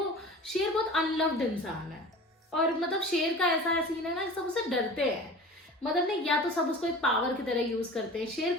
शेर बहुत अनलव्ड इंसान है, और मतलब शेर का ऐसा सीन है ना, सब उससे डरते हैं। मतलब नहीं, या तो सब उसको एक पावर की तरह यूज करते हैं। शेर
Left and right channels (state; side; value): normal; both; correlation 0.38